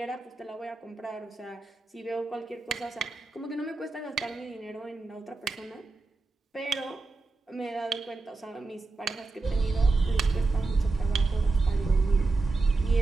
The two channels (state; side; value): quieter; left; 3.6 dB